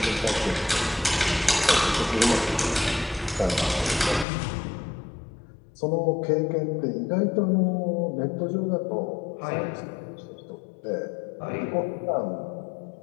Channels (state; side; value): drops out; right; at 4.2 s